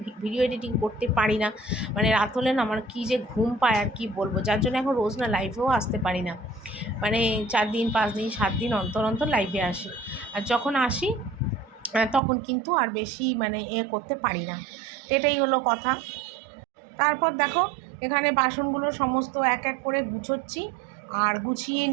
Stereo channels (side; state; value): left; drops out; at 12.2 s